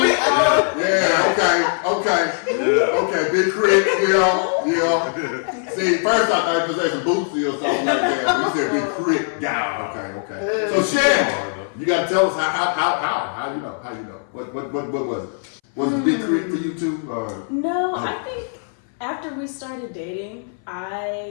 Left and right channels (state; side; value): silent; right; 60 dB below the other